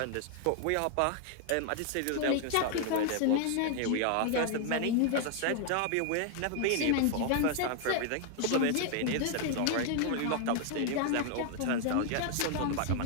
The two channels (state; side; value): different; both; correlation 0.00